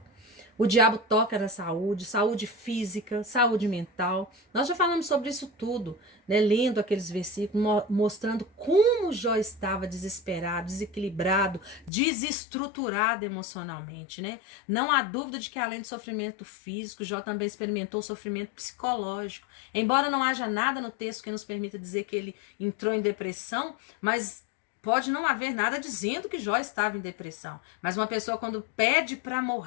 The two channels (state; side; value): drops out; right; at 11.9 s